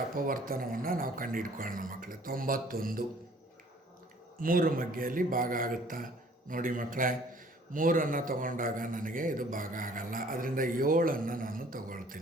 ಅಪವರ್ತನವನ್ನು ನಾವು ಕಂಡುಹಿಡ್ಕೊಳ್ಳೋಣ ಮಕ್ಕಳೇ. 91 3 ಮಗ್ಗೆಯಲ್ಲಿ ಭಾಗ ಆಗುತ್ತಾ ನೋಡಿ ಮಕ್ಕಳೇ. 3ಅನ್ನು ತಗೊಂಡಾಗ ನನಗೆ ಇದು ಭಾಗ ಆಗಲ್ಲ. ಅದರಿಂದ 7ಅನ್ನು ನಾನು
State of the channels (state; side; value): normal; both; correlation 0.55